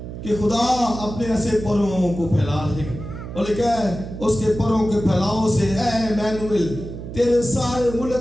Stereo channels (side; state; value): right; noise; hum, 10 dB below the sound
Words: کہ خدا اپنے ایسے پروں کو پھیلا دے گا، اور لکھا ہے اس کے پروں کے پھیلاؤ سے اے ایمانویل تیرے سارے